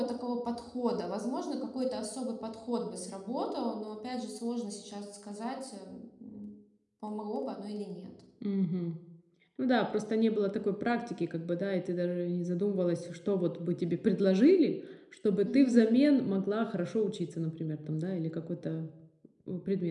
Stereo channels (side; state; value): both; identical; correlation 1.00